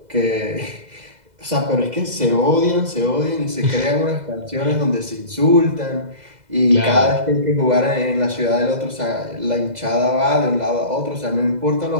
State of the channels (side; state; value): left; late; 2.0 ms